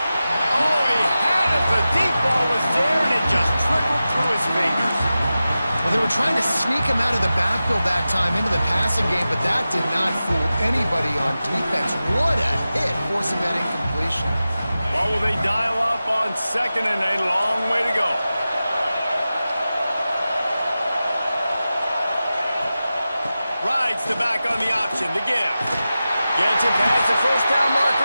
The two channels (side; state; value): both; inverted; correlation -0.94